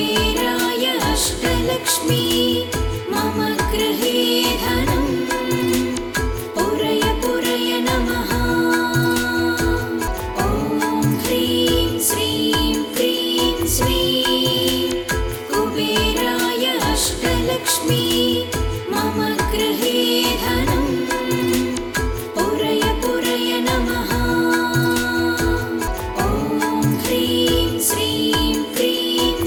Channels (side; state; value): both; identical; correlation 1.00